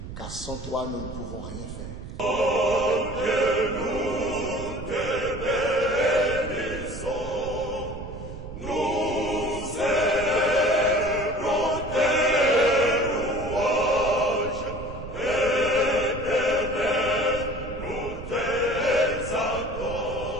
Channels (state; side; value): noise; right; rumble, 10 dB below the sound